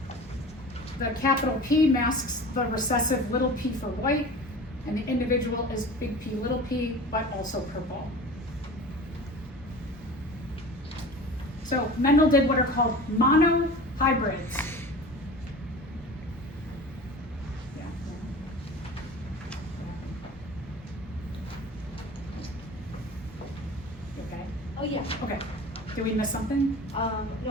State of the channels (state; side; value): normal; both; correlation 0.37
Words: the capital P masks the recessive little p for white, and the individual is big P little p, but also purple. So Mendel did what are called monohybrids. Okay. Oh, yeah. Okay. Did we miss something? No,